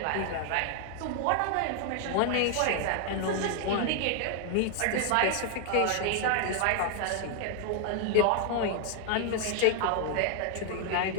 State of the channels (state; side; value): different; both; correlation 0.00